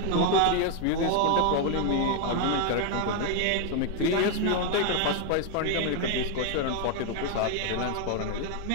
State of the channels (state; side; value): different; both; correlation 0.01